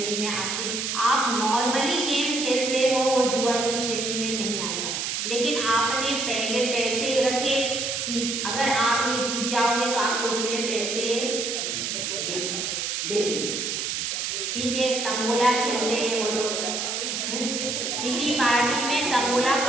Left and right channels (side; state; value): right; noise; hiss, 2 dB below the sound